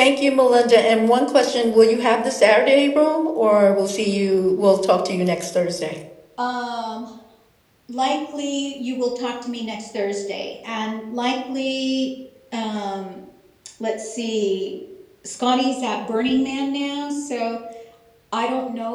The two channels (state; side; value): identical; both; correlation 1.00